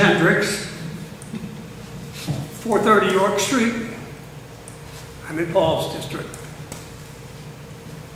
430 York Street. I'm in Paul's district.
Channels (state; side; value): identical; both; correlation 1.00